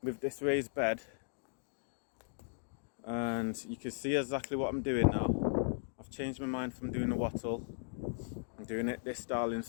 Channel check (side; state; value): right; silent; digital silence